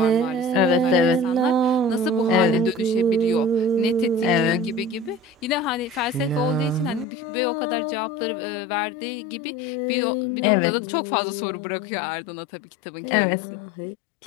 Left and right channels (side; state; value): right; drops out; at 7.1 s